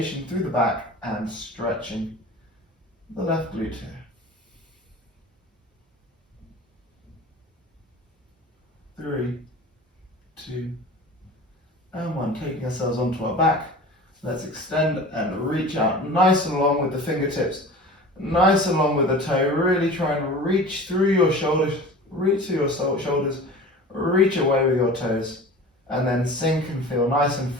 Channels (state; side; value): normal; both; correlation 0.38